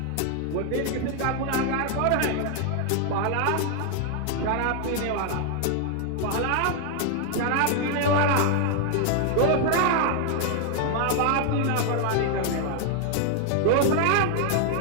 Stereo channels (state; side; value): different; both; correlation 0.00